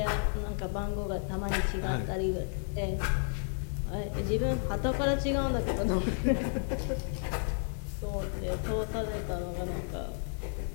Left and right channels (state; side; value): silent; right; 56 dB below the other